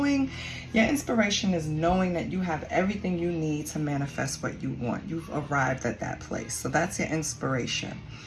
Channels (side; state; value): both; identical; correlation 1.00